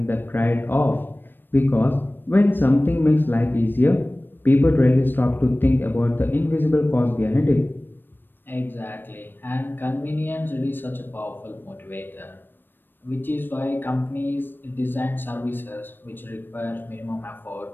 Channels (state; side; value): late; right; 0.095 ms